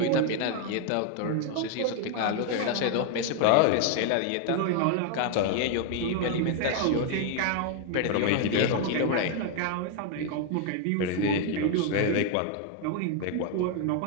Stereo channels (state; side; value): different; both; correlation 0.00